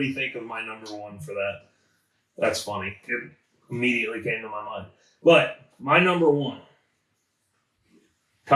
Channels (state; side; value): identical; both; correlation 1.00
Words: think of my number 1 for that. That's funny. It immediately came to my mind. But my number one,